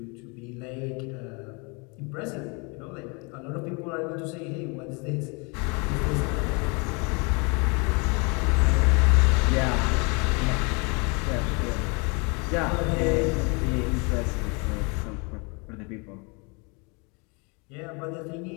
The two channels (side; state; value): right; quieter; 31.3 dB